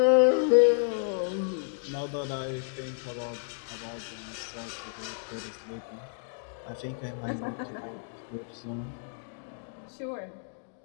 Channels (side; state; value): right; silent; digital silence